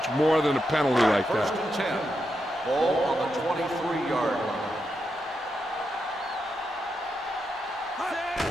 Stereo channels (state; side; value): normal; both; correlation 0.85